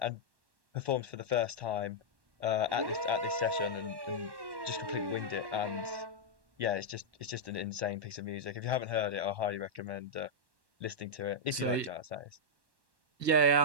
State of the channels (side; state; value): left; late; 1.1 ms